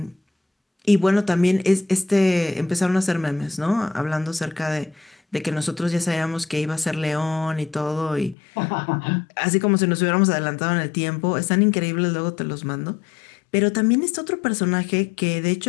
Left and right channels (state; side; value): drops out; right; at 8.3 s